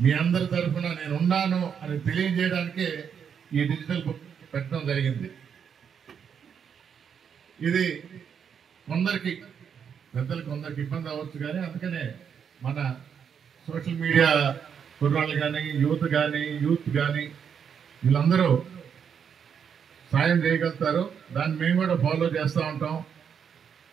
అందరి తరఫున నేను ఉన్నాను అని తెలియజేయడానికే ఈ డిజిటల్ బుక్ పెట్టడం జరిగింది. ఇది కొందరికి పెద్దలకు కొందరికి ఇబ్బంది అవ్వచ్చు, కానీ అందుకనే మన సోషల్ మీడియా కుర్రాళ్ళు కానీ యూత్ కానీ వీళ్ళందరూ సాయం చేయగలుగుతారు. దాన్ని మేము కూడా ఫాలో చేస్తూ ఉంటాం.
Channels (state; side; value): quieter; left; 7.4 dB